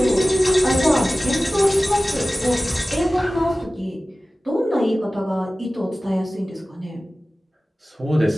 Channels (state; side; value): normal; both; correlation 0.97